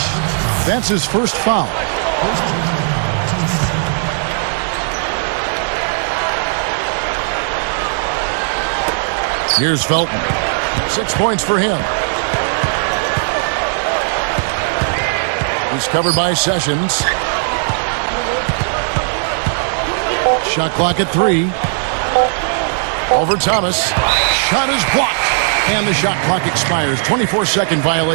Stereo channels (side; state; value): left; silent; digital silence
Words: That's his first foul. Here's Felton. 6 points for him. He's covered by Sessions. Shot clock at 3. Over Thomas. Shot is blocked. And the shot clock expires. 24-second